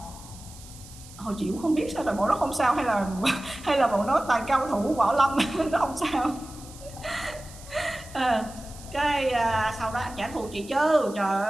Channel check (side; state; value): right; noise; hiss, 19 dB below the sound